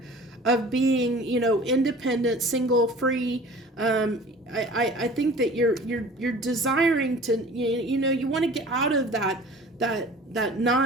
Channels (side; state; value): both; normal; correlation 0.44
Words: of being, you know, independent, single, free. I think that you're desiring to, you know, you want to get out of that